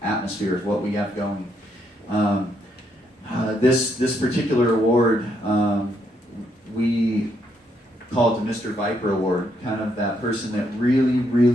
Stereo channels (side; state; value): both; normal; correlation 0.75